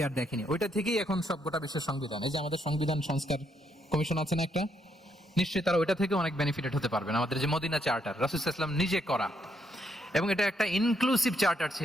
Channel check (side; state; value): both; normal; correlation 0.75